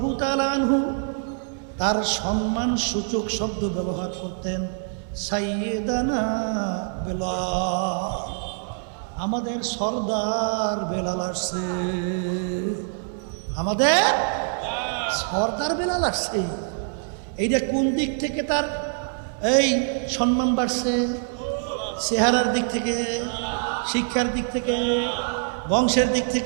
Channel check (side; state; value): left; silent; 62 dB below the other